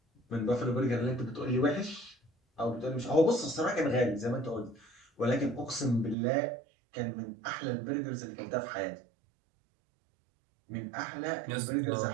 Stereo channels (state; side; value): drops out; left; at 6.2 s